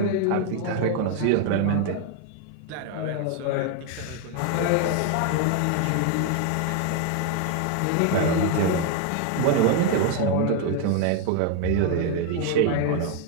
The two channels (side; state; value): both; different; correlation 0.01